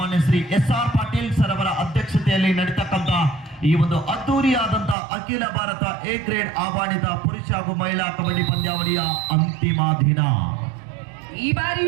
ಶ್ರೀ SR ಪಾಟೀಲ್ ಸರ್ ಅವರ ಅಧ್ಯಕ್ಷತೆಯಲ್ಲಿ ನಡೀತಕ್ಕಂತ ಈ ಒಂದು ಅದ್ದೂರಿಯಾದಂತ ಅಖಿಲ ಭಾರತ A ಗ್ರೇಡ್ ಆಹ್ವಾನಿತ ಪುರುಷ ಹಾಗೂ ಮಹಿಳಾ ಕಬಡ್ಡಿ ಪಂದ್ಯಾವಳಿಯ ಅಂತಿಮ ದಿನ. ಈ ಬಾರಿ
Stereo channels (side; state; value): left; drops out; at 5.0 s